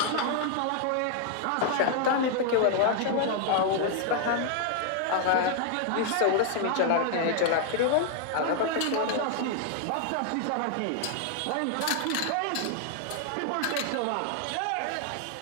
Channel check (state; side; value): different; both; correlation 0.00